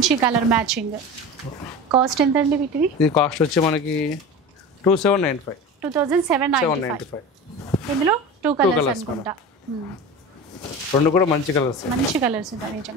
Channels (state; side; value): normal; both; correlation 0.31